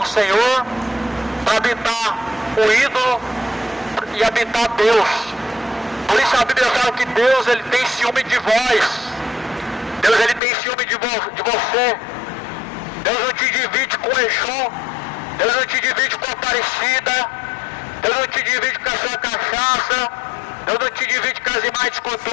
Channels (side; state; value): right; drops out; at 10.4 s